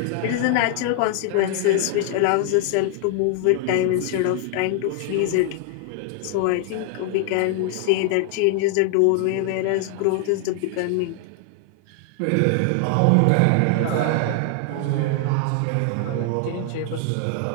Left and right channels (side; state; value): both; different; correlation 0.00